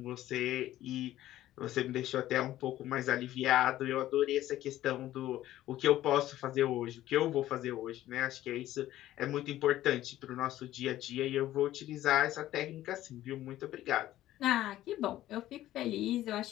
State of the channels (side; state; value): right; quieter; 14.1 dB